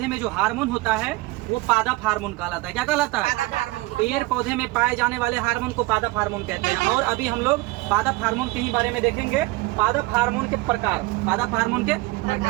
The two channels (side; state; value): left; quieter; 21.1 dB